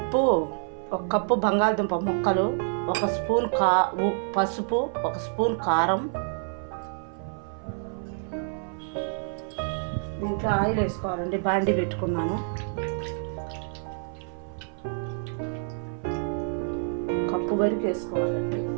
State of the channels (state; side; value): silent; left; 57 dB below the other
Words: కప్పు బంగాళదుంప ముక్కలు, ఒక స్పూన్ పసుపు, ఒక స్పూన్ కారం. దీంట్లో ఆయిల్ వేసుకోవాలండి. బాండి పెట్టుకున్నాను. కప్పు వరకు వేసుకోవాలండి.